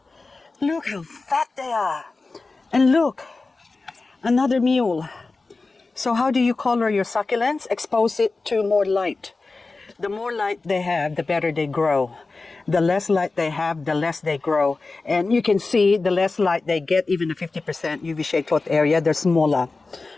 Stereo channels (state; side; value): quieter; right; 3.7 dB